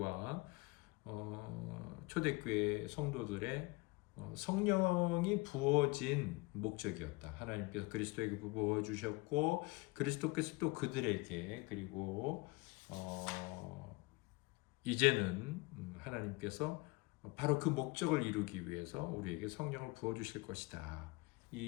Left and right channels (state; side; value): quieter; right; 24.2 dB